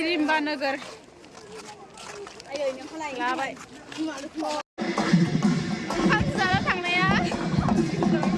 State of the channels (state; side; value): identical; both; correlation 1.00